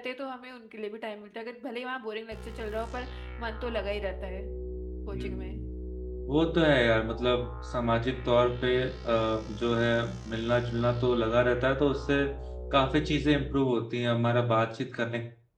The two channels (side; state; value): both; identical; correlation 1.00